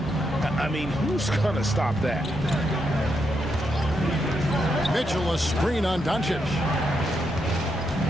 I mean, who's going to stop that? Mitchell a screen on Doncic.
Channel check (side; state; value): both; normal; correlation 0.81